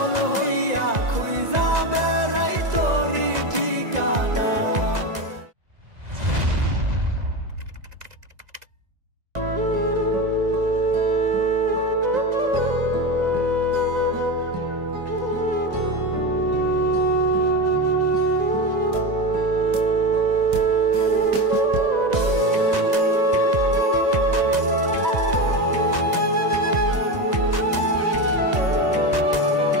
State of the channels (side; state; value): left; late; 2.0 ms